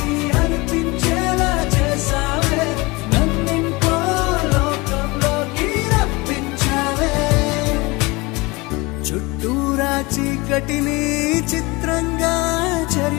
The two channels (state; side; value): quieter; right; 24.2 dB